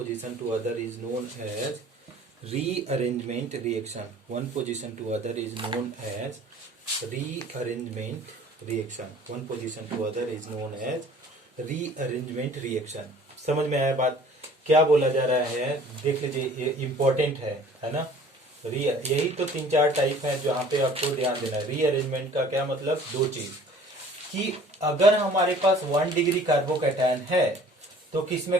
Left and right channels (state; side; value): normal; both; correlation 0.50